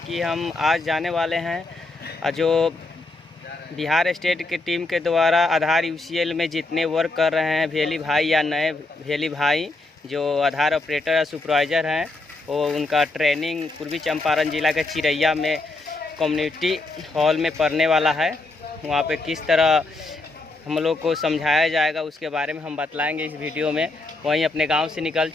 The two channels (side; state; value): right; quieter; 3.1 dB